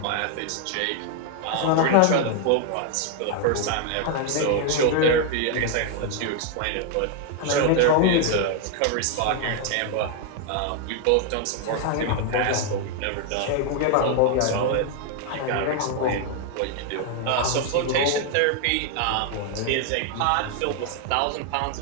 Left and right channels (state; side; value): different; both; correlation 0.00